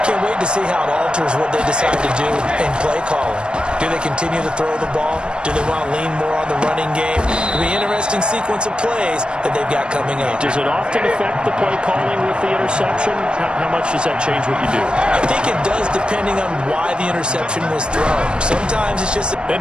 Can't wait to see how it alters what they decide to do in play calling. Do they continue to throw the ball? Do they want to lean more on the running game? It'll be an interesting sequence of plays that they've got coming up. Does it often affect the play calling with the interception? How much does that change what you do? I think it does depending on why the interception was thrown. Sometimes it's just... And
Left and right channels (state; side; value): late; left; 0.054 ms